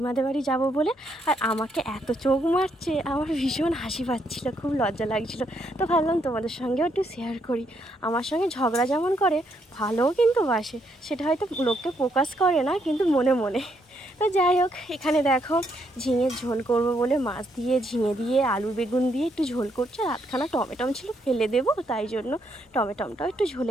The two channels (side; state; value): both; normal; correlation 0.75